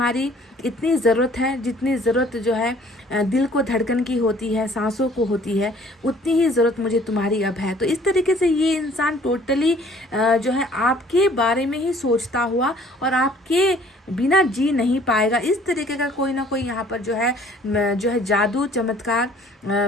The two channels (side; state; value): both; normal; correlation 0.56